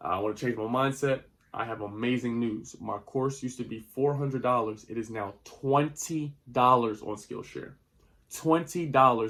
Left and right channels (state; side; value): identical; both; correlation 1.00